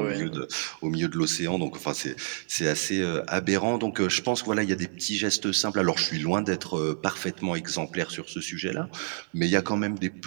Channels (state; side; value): silent; left; 59 dB below the other